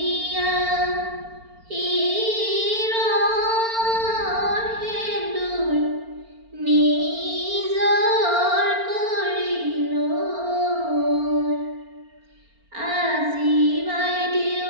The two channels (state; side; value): late; left; 4.4 ms